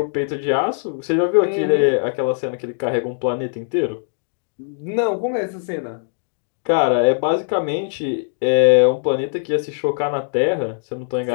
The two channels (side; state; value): right; silent; digital silence